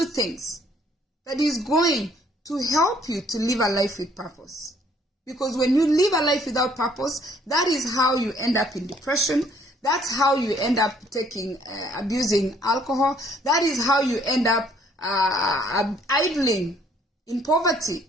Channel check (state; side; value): normal; both; correlation 0.63